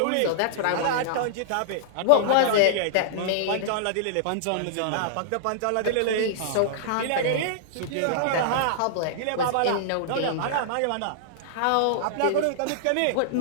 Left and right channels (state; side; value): different; both; correlation -0.02